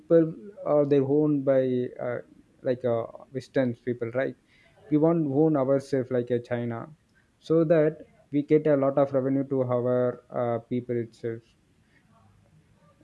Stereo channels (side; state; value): both; identical; correlation 1.00